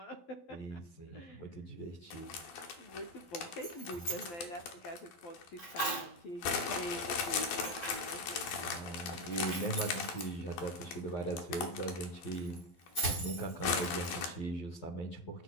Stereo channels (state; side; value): late; right; 12 ms